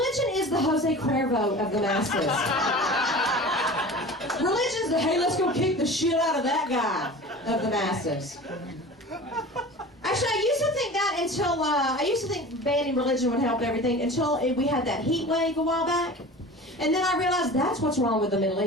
is the Jose Cuervo of the masses. Religion's the, hey, let's go kick the shit out of that guy of the masses. Actually, I used to think that until, I used to think banning religion would help everything until we had that heat wave a while back. And then I realized that's what's wrong with the Middle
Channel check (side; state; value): both; normal; correlation 0.37